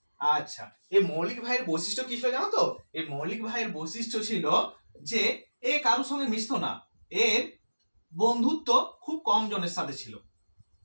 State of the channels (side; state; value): both; inverted; correlation -1.00